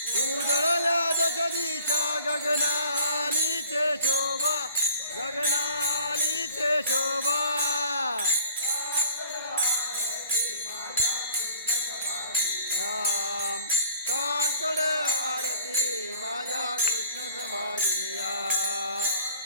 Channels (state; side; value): inverted; both; correlation -0.49